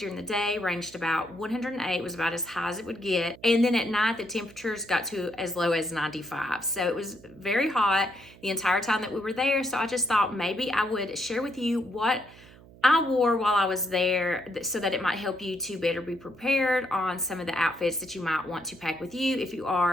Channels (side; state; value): right; noise; hum, 22 dB below the sound